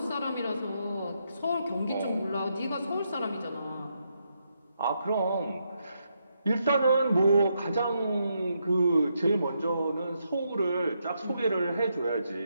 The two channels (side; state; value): both; inverted; correlation -0.80